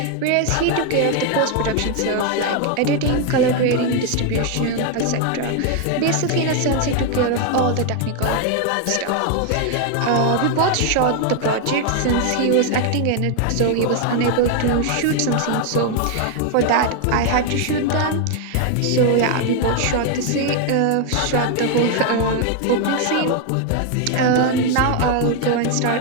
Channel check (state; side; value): different; both; correlation 0.01